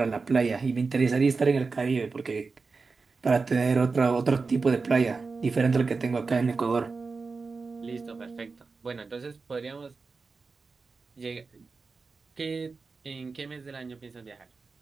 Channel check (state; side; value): quieter; left; 4.4 dB